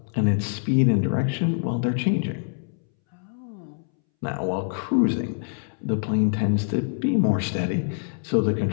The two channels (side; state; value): right; silent; 62 dB below the other